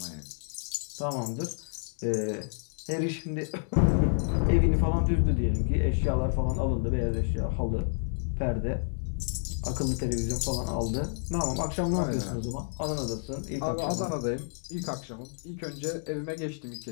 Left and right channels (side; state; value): right; silent; digital silence